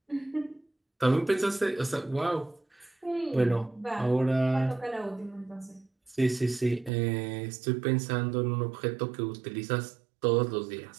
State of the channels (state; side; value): drops out; left; at 6.9 s